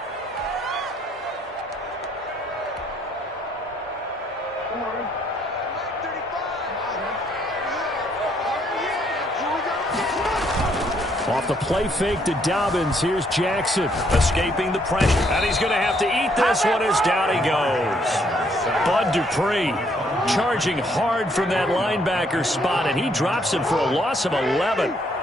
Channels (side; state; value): both; normal; correlation 0.69